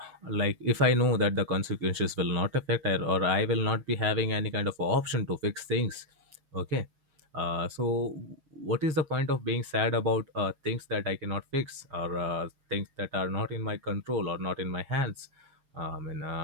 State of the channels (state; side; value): late; left; 7.1 ms